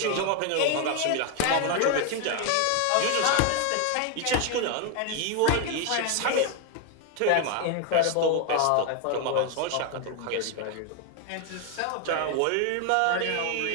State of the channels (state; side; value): different; both; correlation 0.01